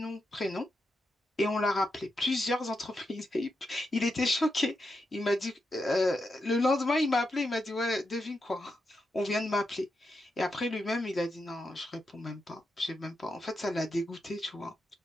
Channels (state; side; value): normal; both; correlation 0.86